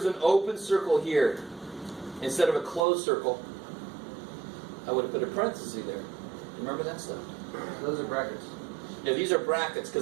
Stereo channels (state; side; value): drops out; left; at 2.8 s